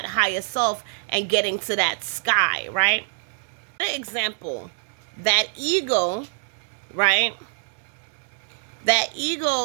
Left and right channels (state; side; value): silent; left; digital silence